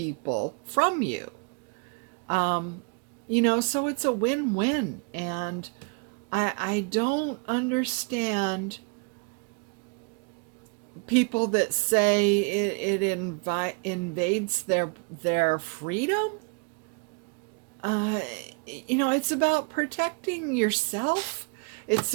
from you. So it's a win-win. And I don't understand people that say it invades their freedom. It's about protecting yourself. It's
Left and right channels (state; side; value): quieter; left; 34.6 dB